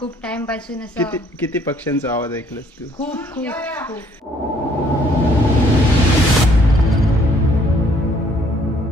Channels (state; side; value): normal; both; correlation 0.63